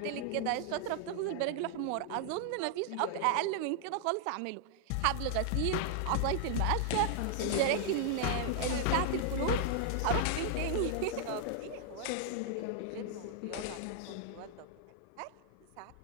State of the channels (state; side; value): different; both; correlation 0.00